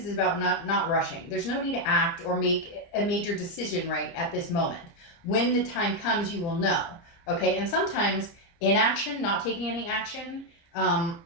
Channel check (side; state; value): right; late; 30 ms